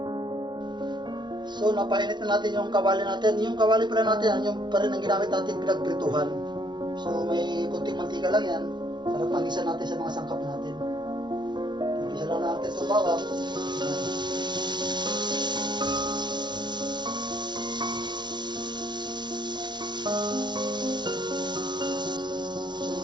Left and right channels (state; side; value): late; left; 0.21 ms